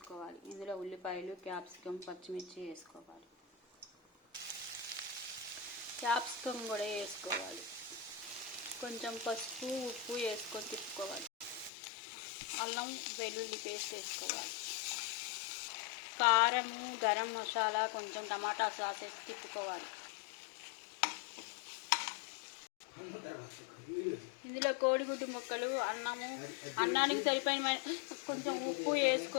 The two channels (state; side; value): drops out; right; at 11.7 s